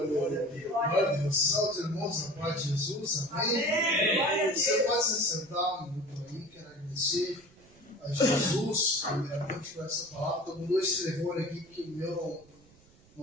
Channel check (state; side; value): noise; right; rumble, 28 dB below the sound